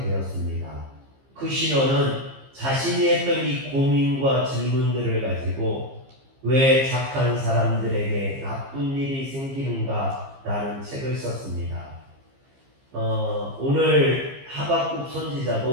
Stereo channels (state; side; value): late; left; 15 ms